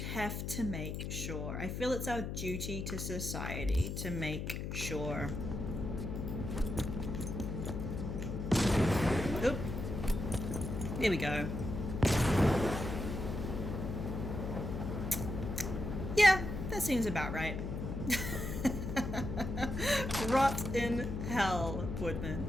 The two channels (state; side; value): noise; left; hum, 4 dB below the sound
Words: to make sure. I feel it's our duty to society to make sure. Oop. There we go. Yeah, that seems about right. Rot in hell,